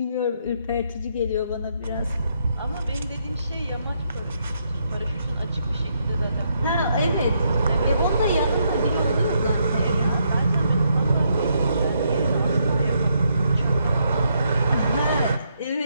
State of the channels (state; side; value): inverted; both; correlation -0.76